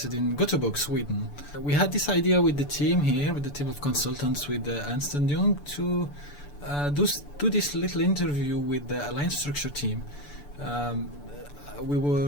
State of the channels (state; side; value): late; right; 6.9 ms